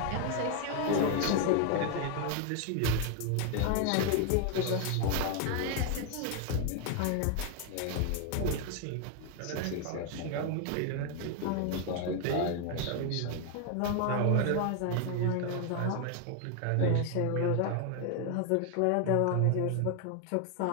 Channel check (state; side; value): different; both; correlation 0.01